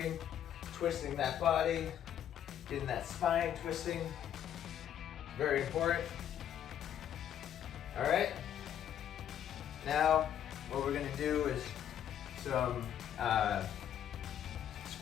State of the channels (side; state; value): right; quieter; 10.0 dB